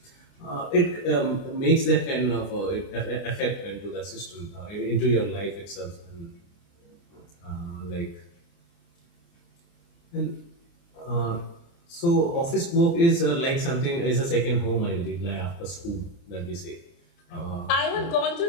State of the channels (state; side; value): late; right; 29 ms